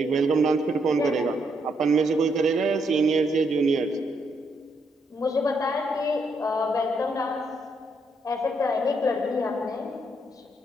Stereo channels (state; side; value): normal; both; correlation 0.76